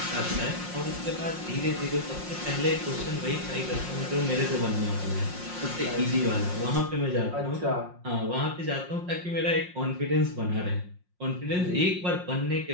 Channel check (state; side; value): late; left; 5.6 ms